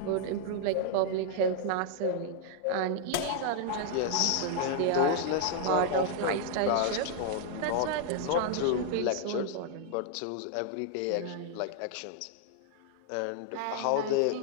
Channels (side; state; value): both; different; correlation 0.00